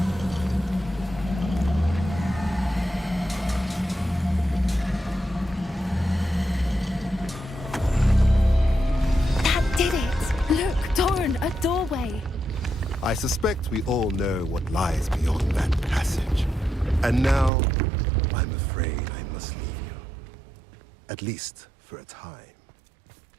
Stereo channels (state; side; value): drops out; left; at 17.5 s